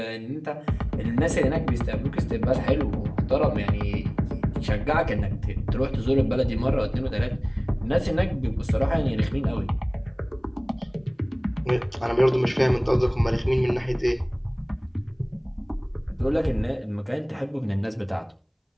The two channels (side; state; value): both; identical; correlation 1.00